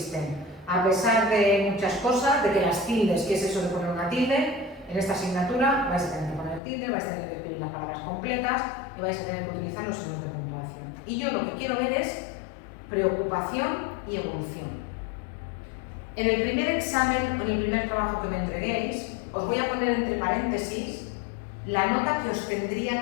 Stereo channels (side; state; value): right; drops out; at 6.6 s